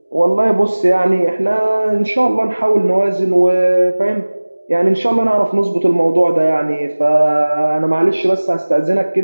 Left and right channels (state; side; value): inverted; both; correlation -1.00